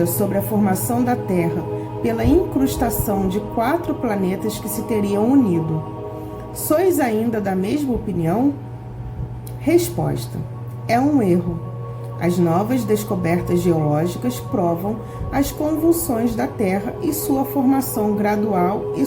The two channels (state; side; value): identical; both; correlation 1.00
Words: sobre a formação da Terra pela incrustação de 4 planetas que se teriam unido, sois ainda da mesma opinião? Resposta: é um erro. As novas descobertas geológicas provam as convulsões da Terra e sua formação gradual e